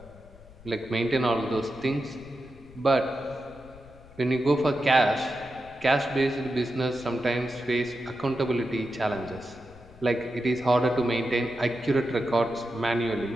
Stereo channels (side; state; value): left; noise; rumble, 22 dB below the sound